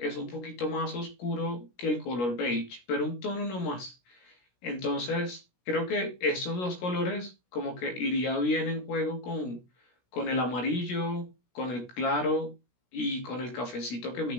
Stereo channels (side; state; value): right; late; 17 ms